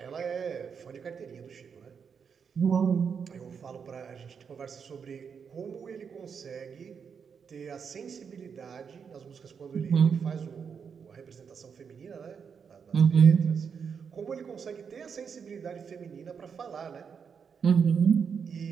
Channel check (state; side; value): quieter; left; 6.5 dB